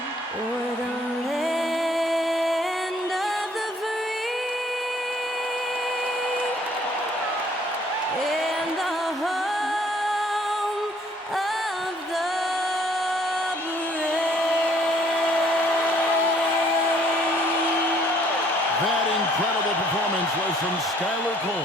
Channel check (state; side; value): normal; both; correlation 0.61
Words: o'er the land of the free and the home of the That incredible performance was from Skylar Cole,